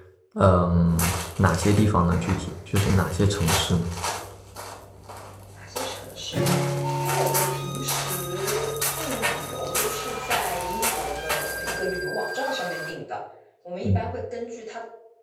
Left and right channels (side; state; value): both; identical; correlation 1.00